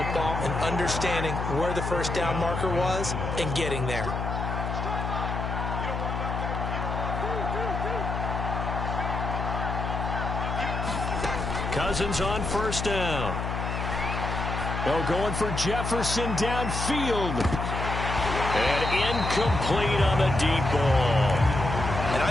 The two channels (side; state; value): left; noise; hum, 3 dB below the sound